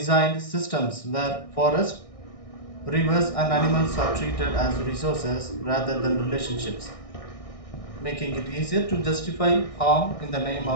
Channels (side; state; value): right; late; 1.6 ms